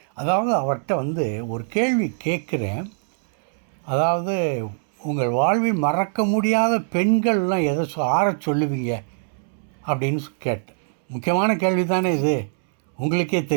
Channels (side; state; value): left; silent; 64 dB below the other